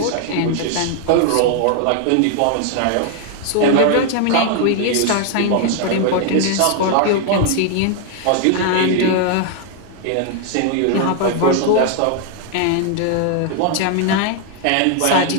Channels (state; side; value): different; both; correlation 0.00